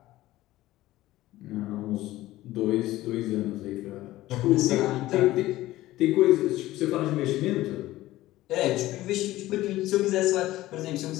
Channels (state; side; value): quieter; right; 16.3 dB